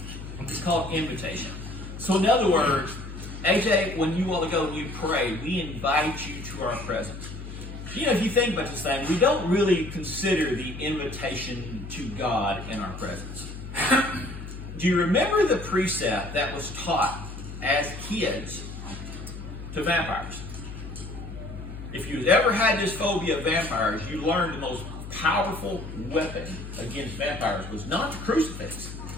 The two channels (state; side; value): noise; left; hum, 10 dB below the sound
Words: It's called invitation. So in other words, AJ, when you want to go and you pray, we invite you to our presence. If you think about this thing, we don't really consider the invitation to God in our presence. Do you remember the precept that was taught as kids to vampires? If you've ever had this phobia of vampires, you learned the most powerful weapon against vampires was not the crucifix.